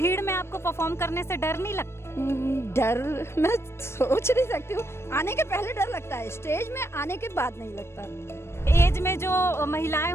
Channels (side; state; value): right; late; 0.12 ms